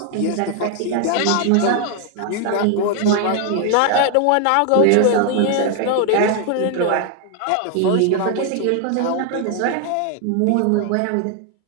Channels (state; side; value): different; both; correlation 0.00